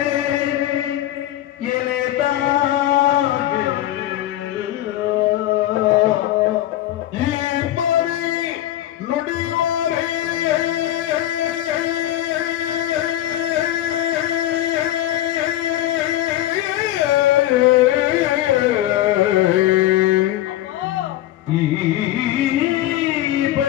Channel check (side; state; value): right; quieter; 13.7 dB